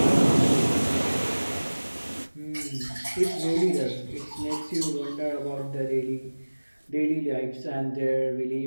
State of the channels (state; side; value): inverted; both; correlation -1.00